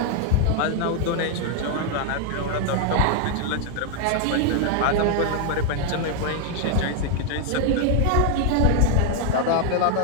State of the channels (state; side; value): different; both; correlation 0.00